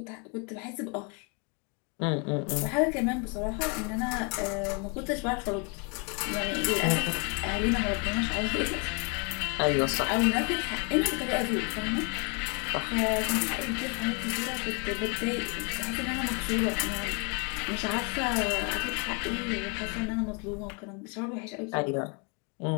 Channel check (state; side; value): quieter; right; 33.7 dB